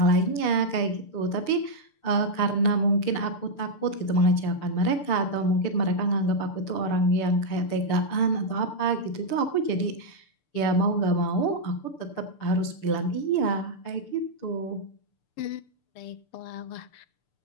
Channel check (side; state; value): right; late; 6.8 ms